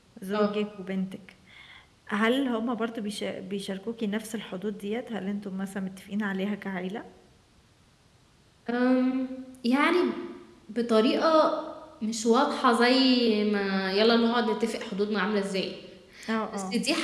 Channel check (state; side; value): identical; both; correlation 1.00